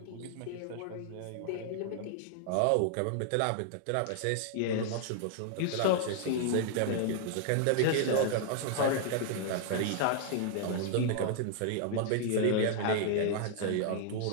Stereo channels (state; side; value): different; both; correlation 0.00